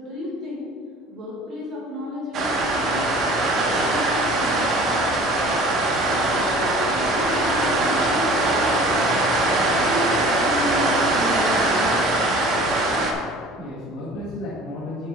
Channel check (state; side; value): normal; both; correlation 0.46